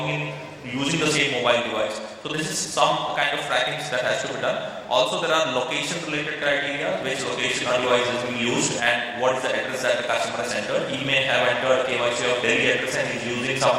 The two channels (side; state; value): both; identical; correlation 1.00